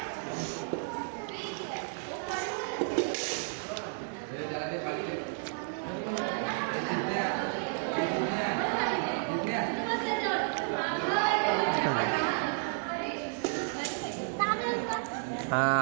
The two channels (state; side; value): silent; left; 56 dB below the other